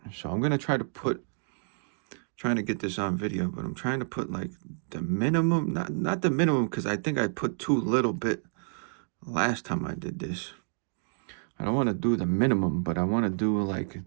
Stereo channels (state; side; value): silent; left; digital silence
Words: So I'm gonna trying to get this on video, but I'm trying to put like the minimum, not the minimum, because I think I put too little bit last time I did this. I don't want to do the minimum, but I want to do like